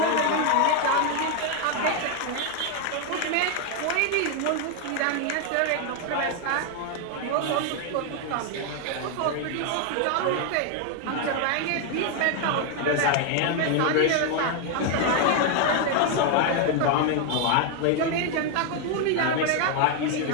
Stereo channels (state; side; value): different; both; correlation 0.01